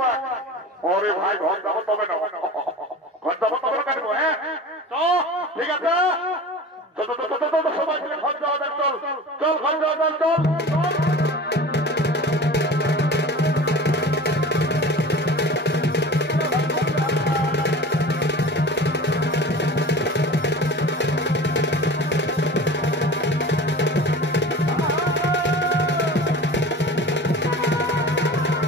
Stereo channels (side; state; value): both; normal; correlation 0.36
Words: ওরে ভাই ঘর যাবো তবে না ঘর যাবো তবে কাটবো হ্যাঁ ঠিক আছে সবাই মিলে ঘর যাওয়া দেখ চল চল ঘর যাওয়া দেখ চল